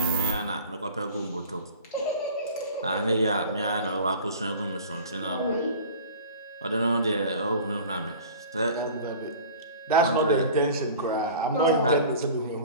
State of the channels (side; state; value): both; inverted; correlation -0.41